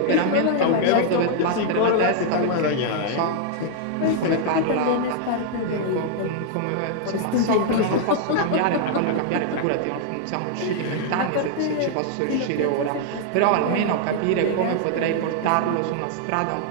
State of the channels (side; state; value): both; different; correlation 0.00